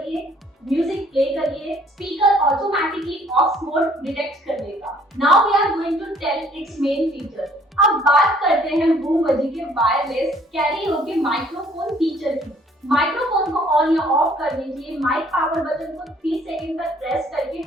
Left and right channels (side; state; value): both; normal; correlation 0.59